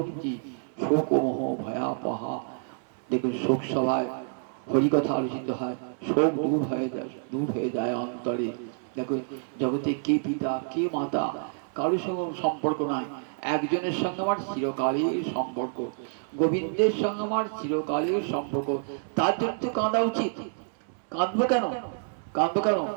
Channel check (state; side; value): silent; left; 59 dB below the other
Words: শোক মোহ ভয়াপহা, দেখুন শোক সভায় হরিকথা আলোচিত হয়, শোক দূর হয়ে যায় অন্তরে। দেখুন জগতে কে পিতা কে মাতা কারোর সঙ্গে সম্পর্ক নাই, একজনের সঙ্গে আমার চিরকালের সম্পর্ক, গোবিন্দের সঙ্গে আমার চিরকালের সম্পর্ক, তার জন্য তো কাঁদা উচিত। কাঁদবো কেন, কাঁদবো কেন?